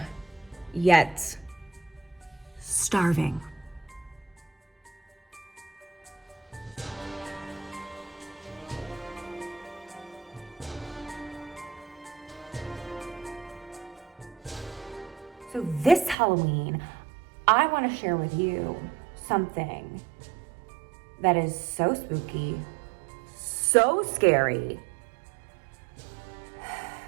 yet starving. So this Halloween, I want to share with you something that is so spooky, so scary.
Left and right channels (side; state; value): left; drops out; at 16.2 s